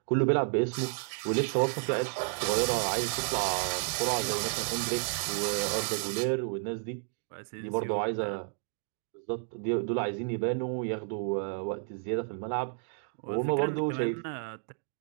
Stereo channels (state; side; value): silent; left; 57 dB below the other